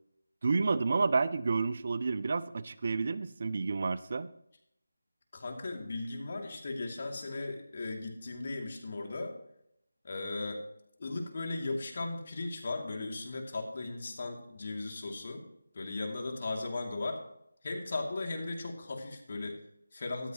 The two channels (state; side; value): inverted; both; correlation -0.91